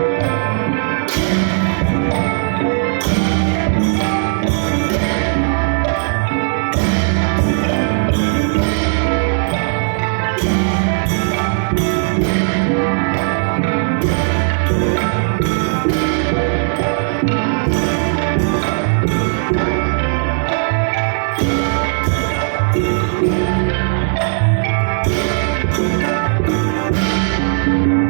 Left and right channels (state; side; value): silent; left; 64 dB below the other